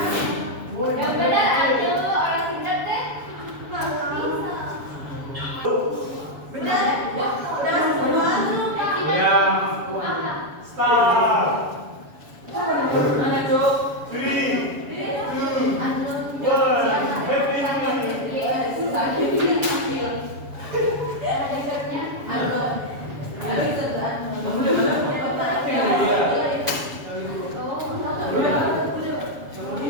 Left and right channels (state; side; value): late; left; 7.1 ms